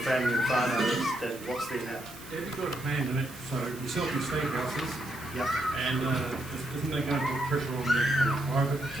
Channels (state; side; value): noise; right; hiss, 17 dB below the sound